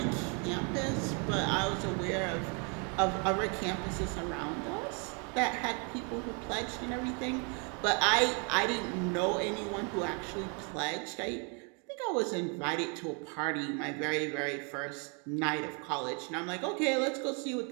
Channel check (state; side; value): quieter; left; 35.8 dB